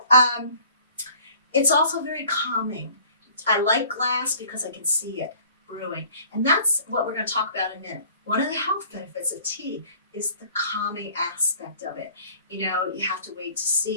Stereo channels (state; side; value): inverted; both; correlation -0.52